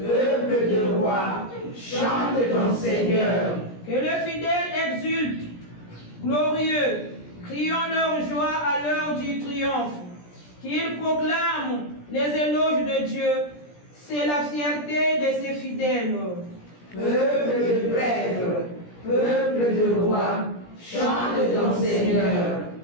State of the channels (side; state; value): right; late; 17 ms